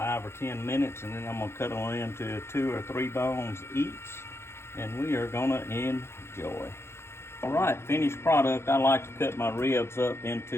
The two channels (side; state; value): right; late; 0.12 ms